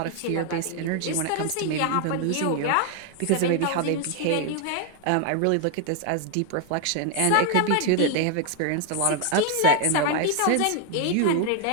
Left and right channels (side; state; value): both; different; correlation 0.00